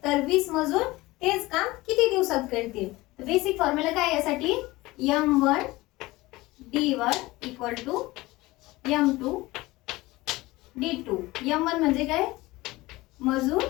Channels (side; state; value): right; quieter; 20.0 dB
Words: तर 20 मजूर तेच काम किती दिवसात करतील. तर बेसिक फॉर्म्युला काय यासाठी m1 d1 equal to m2 d2. m1 म्हणजे काय मजूर